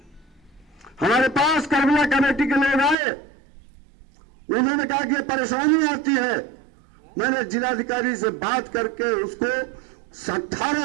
हमारे पास करबला कमेटी के लोग आए, उन्होंने कहा कि परेशानी आती है। मैंने जिलाधिकारी से बात करके उसको 18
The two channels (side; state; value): left; drops out; at 3.0 s